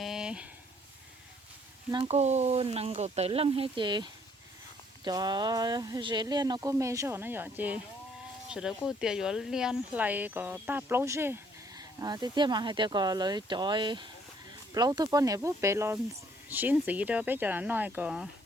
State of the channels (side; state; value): both; normal; correlation 0.64